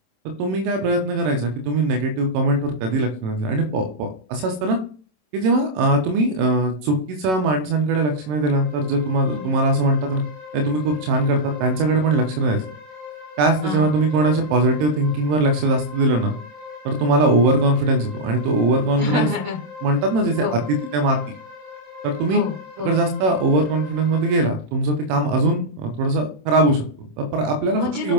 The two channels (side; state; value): left; late; 27 ms